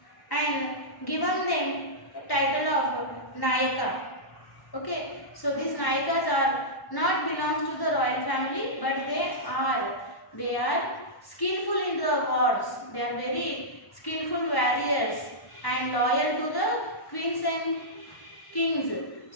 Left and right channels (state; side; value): late; right; 1.1 ms